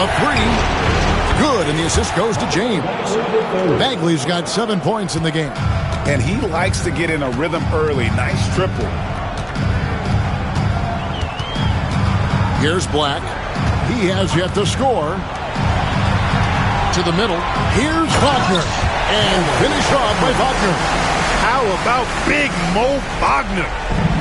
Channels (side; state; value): both; identical; correlation 1.00